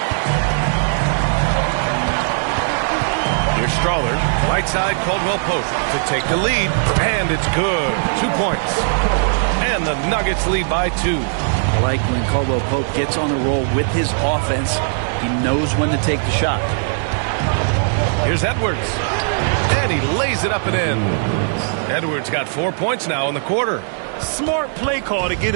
Here's Strawler. Right side, Caldwell Pope to take the lead. And it's good. 2 points. And the Nuggets lead by 2. I like when Caldwell Pope gets on the roll with his offense. He knows when to take the shot. Here's Edwards. And he lays it up and in. Edwards got 4 points now in the quarter. Smart play call to get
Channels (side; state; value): left; silent; digital silence